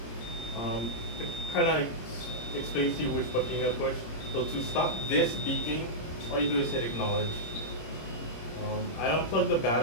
It kind of explains to you which button you gotta push. So to stop this beeping, all you do is hit acknowledge. I unplugged the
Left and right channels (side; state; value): right; late; 26 ms